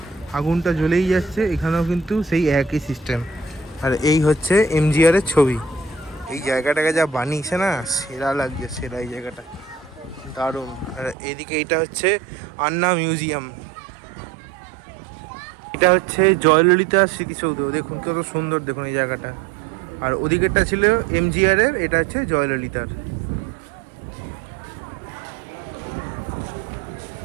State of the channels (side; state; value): left; drops out; at 11.2 s